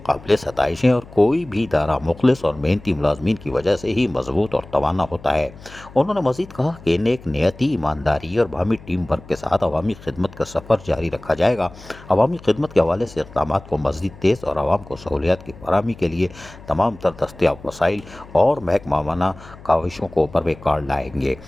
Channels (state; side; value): noise; left; hum, 20 dB below the sound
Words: قابل ستائش ہیں، اور کوئی بھی ادارہ مخلص اور محنتی ملازمین کی وجہ سے ہی مضبوط اور توانا ہوتا ہے۔ انہوں نے مزید کہا کہ نیک نیتی، ایمانداری اور باہمی ٹیم ورک کے ساتھ عوامی خدمت کا سفر جاری رکھا جائے گا۔ عوامی خدمت کے حوالے سے اقدامات کو مزید تیز اور عوام کو سہولیات کی فراہمی کے لیے تمام تر دستیاب وسائل اور محکمانہ کاوشوں کو بروئے کار لائیں گے،